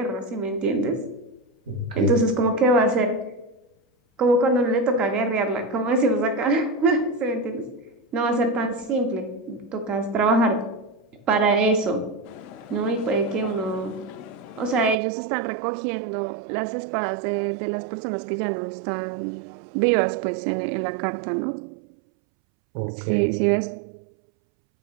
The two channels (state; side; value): drops out; left; at 15.0 s